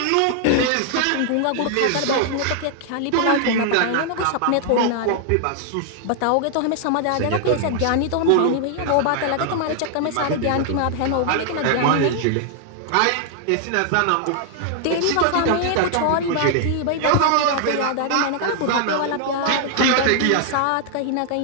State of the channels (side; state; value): both; different; correlation 0.00